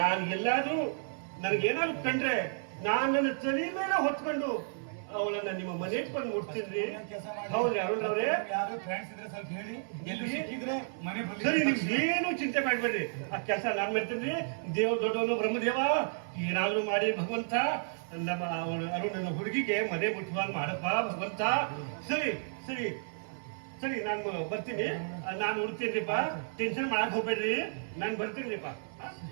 ಎಲ್ಲಾದ್ರೂ ನನಗೇನಾದ್ರು ಕಂಡ್ರೆ ನಾನ್ ನನ್ನ ತಲೆ ಮೇಲೆ ಹೊತ್ಕೊಂಡು ಅವಳನ್ನ ನಿಮ್ಮ ಮನೆಗೆ ಬಂದು ಮುಟ್ತೀನಿ. ಹೌದ್ರಿ ಅರುಣ್ ರವ್ರೆ? ಯಾರು ಫ್ರೆಂಡ್ಸ್ ಇದ್ರೆ ಸ್ವಲ್ಪ ಹೇಳಿ, ಎಲ್ಲಿ ಸಿಕ್ಕಿದ್ರೆ ಮನೆ ಸರಿ, ನೀವು ಏನು ಚಿಂತೆ ಮಾಡ್ಬೇಡ್ರಿ. ಆ ಕೆಲಸ ನಾನ್ ಮಾಡ್ತೀನಿ. ದೇವ ದೊಡ್ಡವನು ಬ್ರಹ್ಮದೇವ, ಏನಾದ್ರೂ ಮಾಡಿ ಭಗವಂತ ನಮ್ಮ ಅರುಣನ ಹುಡುಗಿಗೆ ಮನೆ ಮುಟ್ಟುವಾಗ ಮಾಡಪ್ಪ ಭಗವಂತ. ಸರಿ ಸರಿ ಸರಿ, ನಾನು ಬರ್ತೀನಿ. ನಾನು ಹುಡ್ತೀನಿಪ್ಪ, ಟೆನ್ಷನ್ ಮಾಡಕ್ ಹೋಗ್ಬೇಡ್ರಿ, ನಾನು ಬರ್ತೀನಿಪ್ಪ.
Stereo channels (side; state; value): left; silent; digital silence